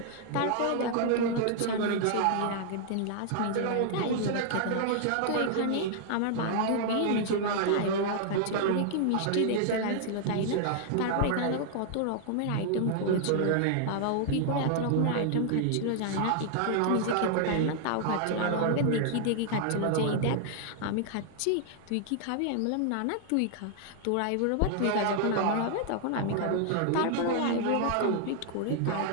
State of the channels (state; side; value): different; both; correlation 0.00